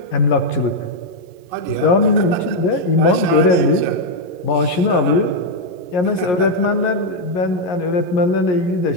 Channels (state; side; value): late; right; 11 ms